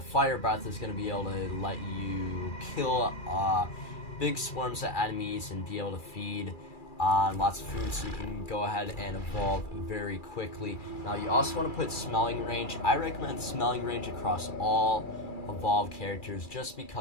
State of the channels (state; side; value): late; right; 2.3 ms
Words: fire breath is going to be able to let you kill big swarms of enemies and be able to feed on lots of food, so you can go ahead and evolve very quickly. Now you also want to put smelling range. I recommend smelling range across all evolved characters just